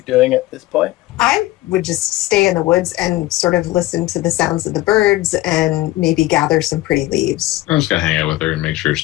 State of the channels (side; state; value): right; quieter; 17.3 dB